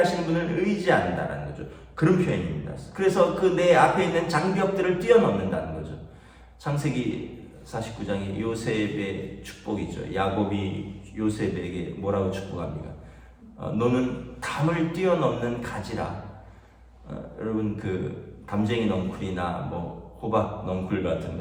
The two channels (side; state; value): both; identical; correlation 1.00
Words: 분을 의지한다는 거죠. 그런 표현입니다. 그래서 그 내 앞에 있는 장벽들을 뛰어넘는다는 거죠. 창세기 49장에 요셉의 축복이죠. 야곱이 요셉에게 뭐라고 축복합니까? 너는 담을 뛰어넘는 가지라. 여러분, 그 담쟁이 넝쿨이나 호박 넝쿨 같은